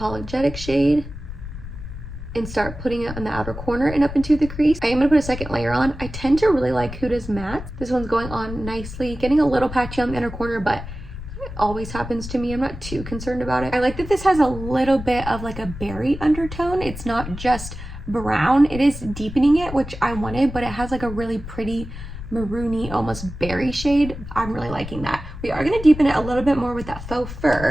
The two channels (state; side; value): noise; left; rumble, 10 dB below the sound